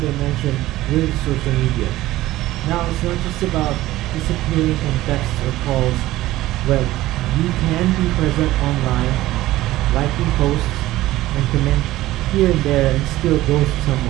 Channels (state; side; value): quieter; left; 16.3 dB